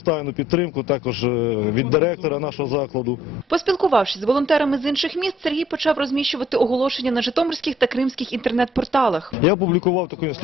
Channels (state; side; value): normal; both; correlation 0.61